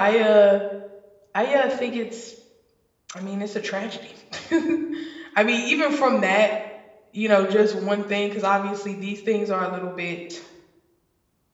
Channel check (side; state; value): both; identical; correlation 1.00